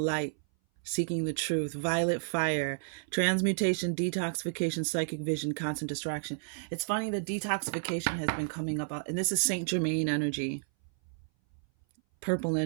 seeking the truth, violet fire, transmutation, detoxification, psychic vision, constant distraction. It's funny that detoxification has been coming up, and this is Saint Germain energy, purple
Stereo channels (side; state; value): left; silent; 57 dB below the other